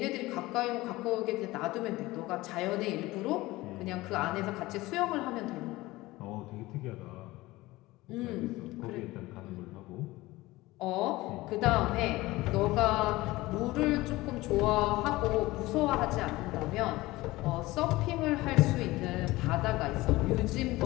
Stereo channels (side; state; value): right; quieter; 19.3 dB